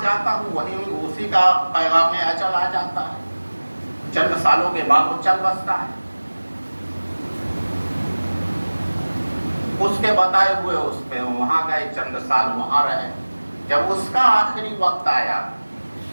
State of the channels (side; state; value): both; inverted; correlation -1.00